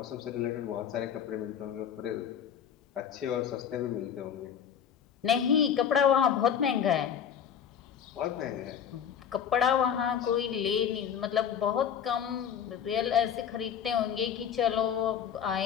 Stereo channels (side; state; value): right; quieter; 8.4 dB